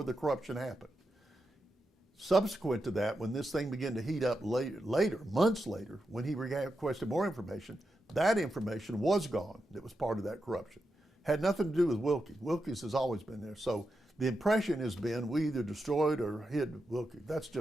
the corruption happened. Subsequent to that, when this thing began to heat up later, months later, when he requested more information, that information was gone. That was part of that corruption. Had nothing to do with Wilkie. Wilkie's has always been there. So the impression has been we either destroyed or hid Wilkie. That's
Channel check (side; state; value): both; normal; correlation 0.87